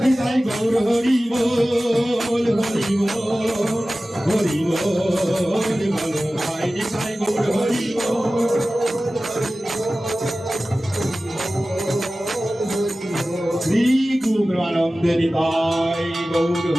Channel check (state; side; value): normal; both; correlation 0.96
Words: নিতাই গৌর হরি বল হরি বল হরি বল বলো ভাই নিতাই গৌর হরি বল শ্রী গুরু আনন্দে নিতাই গৌর